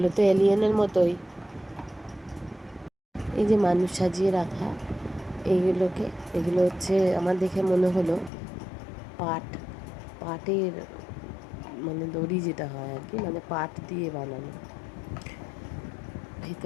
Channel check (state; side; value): drops out; right; at 8.3 s